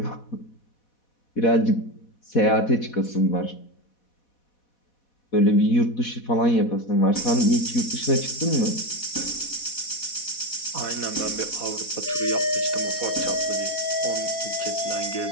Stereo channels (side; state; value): right; late; 4.1 ms